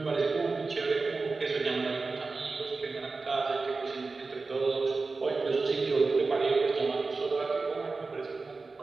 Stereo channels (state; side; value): quieter; left; 3.9 dB